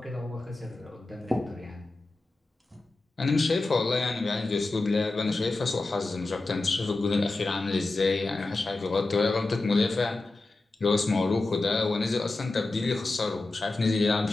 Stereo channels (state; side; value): quieter; right; 3.2 dB